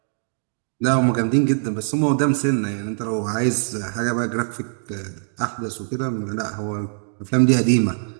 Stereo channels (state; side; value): silent; left; digital silence